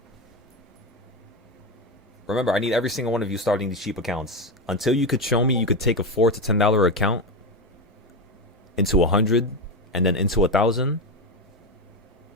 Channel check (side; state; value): both; normal; correlation 0.14